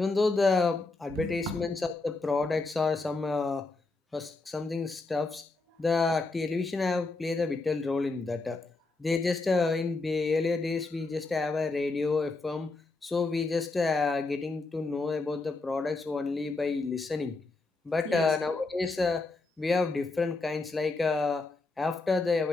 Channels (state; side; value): quieter; right; 3.5 dB